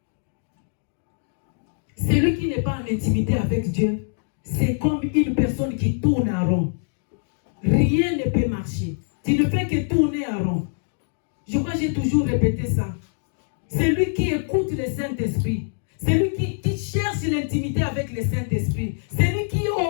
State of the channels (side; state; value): right; silent; digital silence